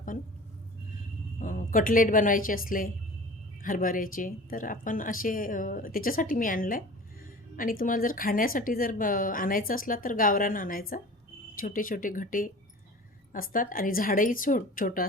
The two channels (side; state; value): both; normal; correlation 0.40